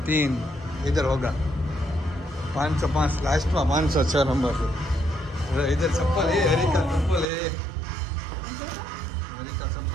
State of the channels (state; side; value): drops out; left; at 7.2 s